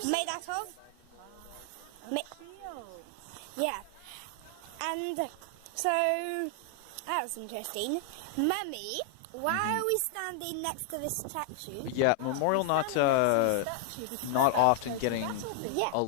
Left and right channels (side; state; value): both; different; correlation 0.00